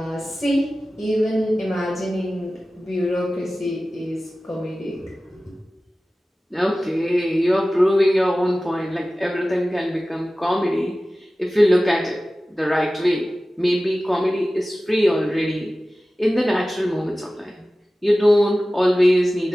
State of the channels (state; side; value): normal; both; correlation 0.96